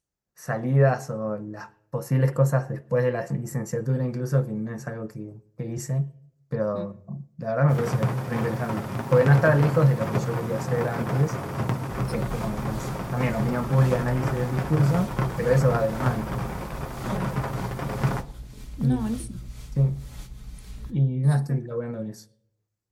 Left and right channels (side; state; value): both; identical; correlation 1.00